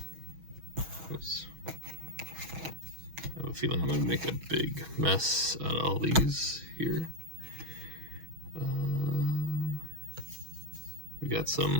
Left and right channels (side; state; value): left; late; 6.2 ms